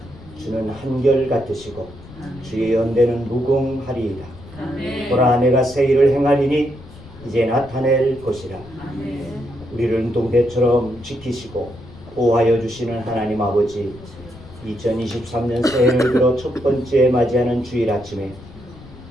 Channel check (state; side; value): noise; left; rumble, 19 dB below the sound